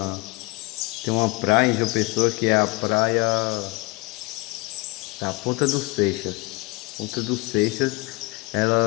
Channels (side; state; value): right; quieter; 24.7 dB